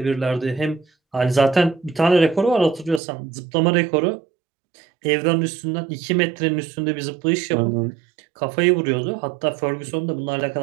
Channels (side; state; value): left; drops out; at 3.0 s